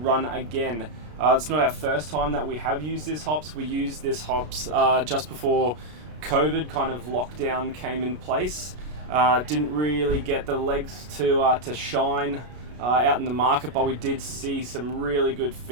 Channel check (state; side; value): late; left; 33 ms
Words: again. It's not our first time that we have used this hops. We used this hops just before COVID kind of lockdown came in place. Didn't really get the legs to shine out in the market, but we did see some really good